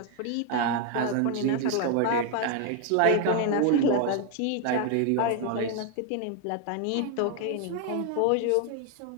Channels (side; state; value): both; different; correlation 0.01